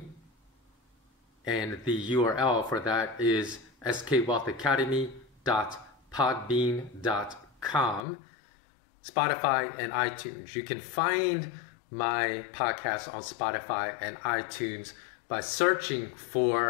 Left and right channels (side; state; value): right; drops out; at 8.1 s